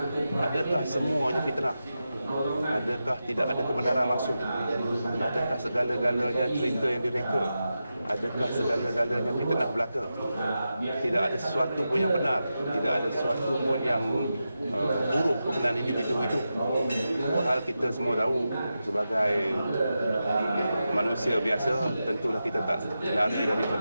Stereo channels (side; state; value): both; inverted; correlation -0.90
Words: adakah semuanya fitnah? Adakah tidak ada kebenaran langsung? Adakah segala-galanya cerita yang direka? Adakah segala-galanya fitnah belaka? Tidak ada sesuatu pun yang benar, tidak ada sesuatu pun yang buruk berkenaan individu itu. Hal kita semua tahu sebagai manusia biasa, tentulah kita tak lari